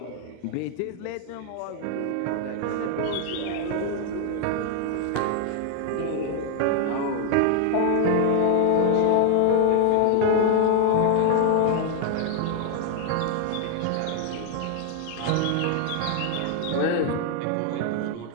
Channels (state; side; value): different; both; correlation 0.00